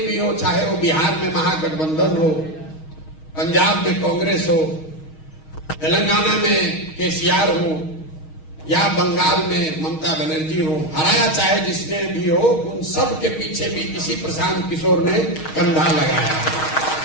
हो, चाहे वो बिहार में महागठबंधन हो, पंजाब में कांग्रेस हो, तेलंगाना में केसीआर हो या बंगाल में ममता बनर्जी हो, हराया चाहे जिसने भी हो, उन सब के पीछे भी इसी प्रशांत किशोर ने कंधा लगाया।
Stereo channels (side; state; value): right; late; 6.4 ms